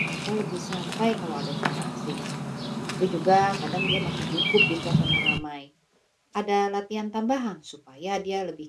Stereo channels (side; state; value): both; identical; correlation 1.00